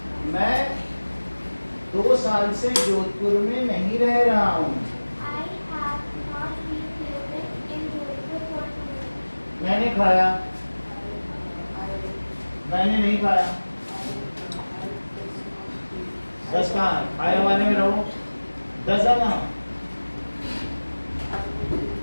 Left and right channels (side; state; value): both; inverted; correlation -1.00